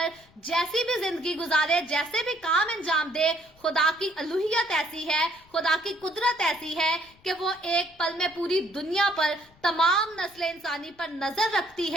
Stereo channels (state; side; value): noise; left; rumble, 29 dB below the sound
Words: जैसी भी जिंदगी गुजारे, जैसे भी काम अंजाम दे, खुदा की अलूहियत ऐसी है, खुदा की कुदरत ऐसी है कि वो एक पल में पूरी दुनिया पर, तमाम नस्ल इंसानी पर नजर रखती